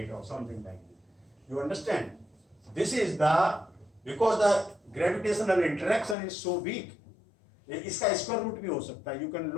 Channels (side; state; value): right; drops out; at 6.2 s